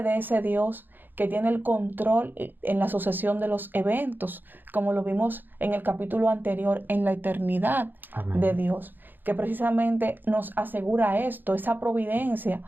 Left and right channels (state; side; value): late; left; 0.091 ms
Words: de ese Dios que tiene el control en la sucesión de los eventos, como lo vimos en el capítulo anterior, en la eternidad. Amén. De Dios, que precisamente nos asegura esto, esa providencia